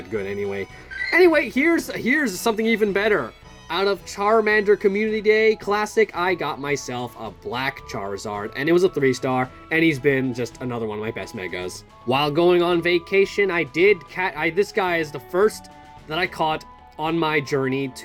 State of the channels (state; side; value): identical; both; correlation 1.00